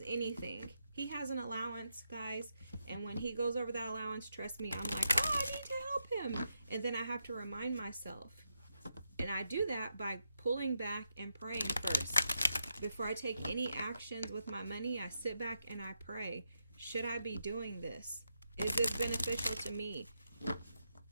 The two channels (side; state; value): both; inverted; correlation -0.84